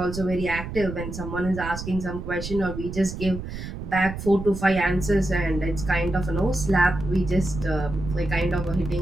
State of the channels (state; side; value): noise; right; rumble, 8 dB below the sound